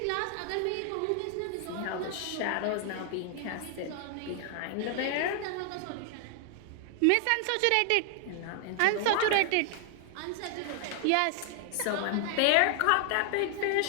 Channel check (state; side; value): different; both; correlation 0.00